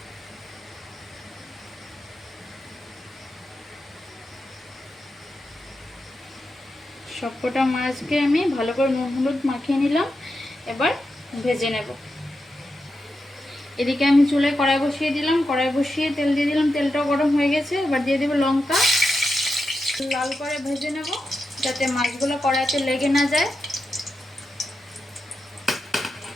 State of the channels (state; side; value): normal; both; correlation 0.88